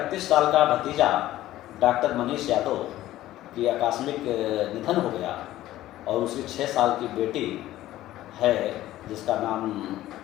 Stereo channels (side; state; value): right; quieter; 14.8 dB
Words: साल का भतीजा डॉक्टर मनीष यादव की आकस्मिक निधन हो गया और उसकी 6 साल की बेटी है जिसका नाम